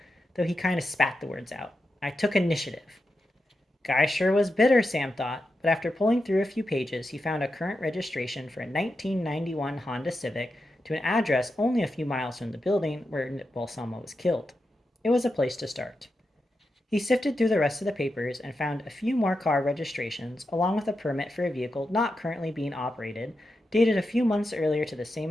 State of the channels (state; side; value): normal; both; correlation 0.88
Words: though he kind of spat the words out. I took initiative. Guy sure was bitter, Sam thought, but after pulling through a few pages, he found a current registration for a 1991 Honda Civic to an address only a few miles from the building where Balsamo was killed. It was a place to start. He sifted through the rest of the papers and found a few more car registrations, along with a permit for a vehicle not currently being operated, dated a few months earlier to the